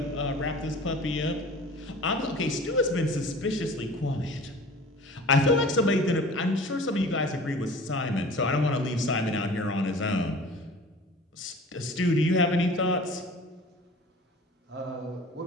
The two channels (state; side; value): normal; both; correlation 0.42